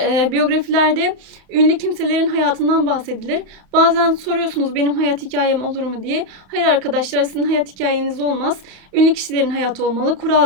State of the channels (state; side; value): late; left; 31 ms